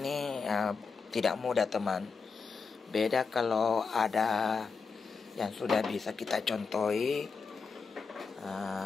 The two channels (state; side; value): quieter; right; 5.1 dB